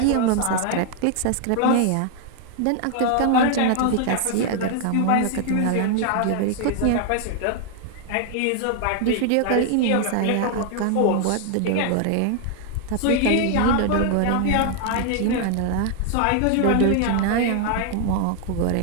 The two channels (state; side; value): different; both; correlation 0.00